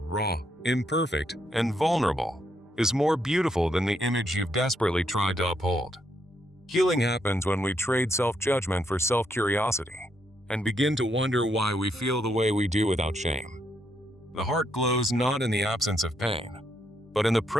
imperfect, and vulnerable, is more beautiful than the image you've desperately tried to uphold? Healing happens when we trade self-judgment for self-curiosity and begin to wonder why we feel the way we do without shame. The heart glows not in the absence of pain, but in the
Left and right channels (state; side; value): normal; both; correlation 0.77